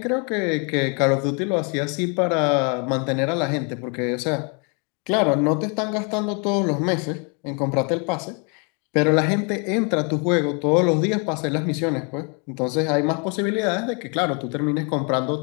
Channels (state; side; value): quieter; right; 35.8 dB